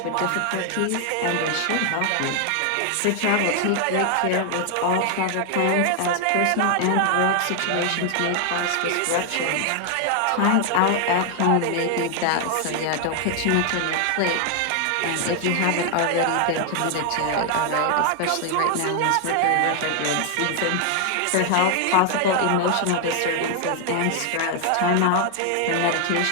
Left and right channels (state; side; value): different; both; correlation 0.00